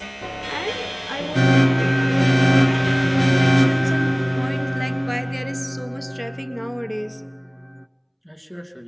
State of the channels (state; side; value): identical; both; correlation 1.00